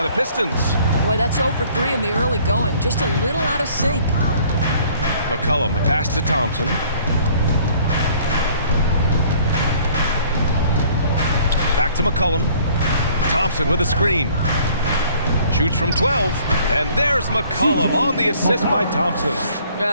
the Pistons. Boy, that's 0 for 3 in the early going. Just a little out of sync. McCollum, the pass to Thompson. Back to McCollum. Thompson with a screen. Shoots from 12. And there's McCollum on the assist by Thompson.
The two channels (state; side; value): inverted; both; correlation -0.57